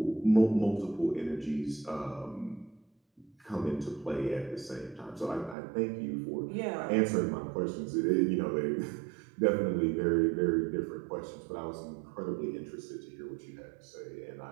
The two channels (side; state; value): left; drops out; at 5.6 s